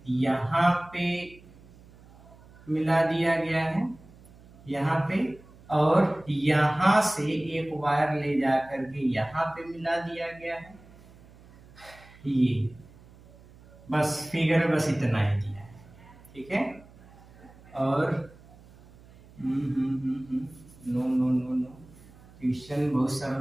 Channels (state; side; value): noise; right; hum, 23 dB below the sound